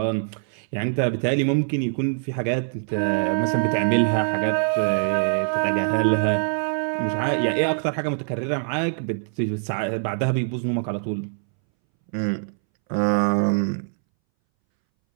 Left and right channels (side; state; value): left; silent; 62 dB below the other